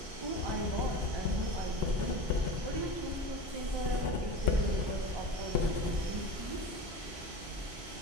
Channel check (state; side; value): normal; both; correlation 0.31